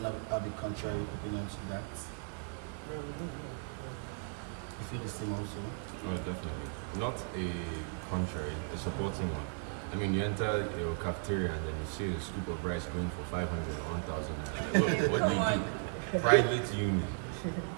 have a contrary opinion to that? You feel the same also? No, definitely. Not a contrary, a supporting one. I mean, you enter your cafeteria and then you see a scoop of rice going for 500 or 1,000 naira. What do you do? Private uni.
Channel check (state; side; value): silent; left; 54 dB below the other